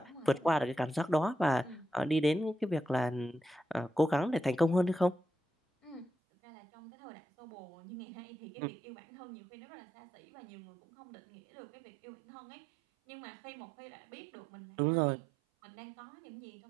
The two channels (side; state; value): left; drops out; at 6.1 s